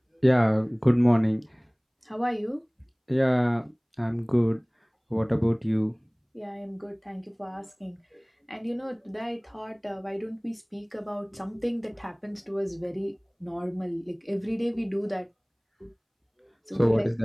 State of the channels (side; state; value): both; identical; correlation 1.00